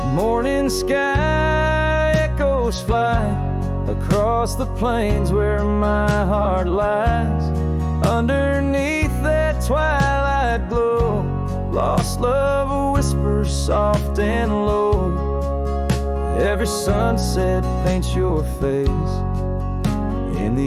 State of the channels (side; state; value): both; identical; correlation 1.00